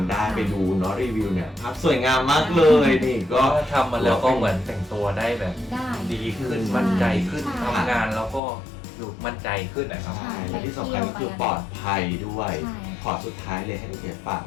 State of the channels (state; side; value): drops out; right; at 8.4 s